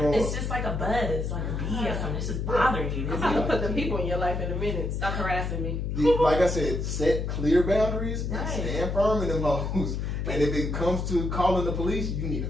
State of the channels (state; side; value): noise; left; hum, 2 dB below the sound